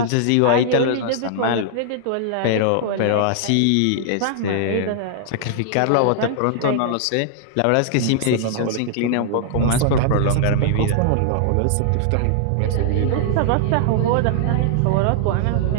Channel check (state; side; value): different; both; correlation -0.01